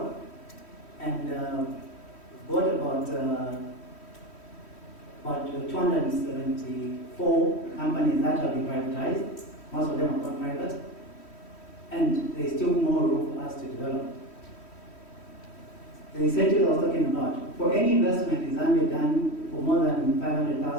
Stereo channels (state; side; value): late; right; 3.1 ms